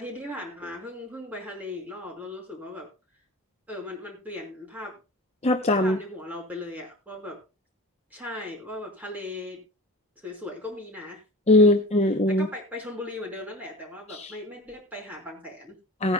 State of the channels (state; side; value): normal; both; correlation 0.36